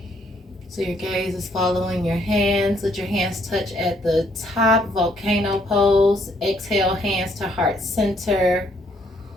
So your gaze is following your hands. Let your hands touch at the top, volcano pose. Exhale, hands to heart center.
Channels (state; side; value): normal; both; correlation 0.68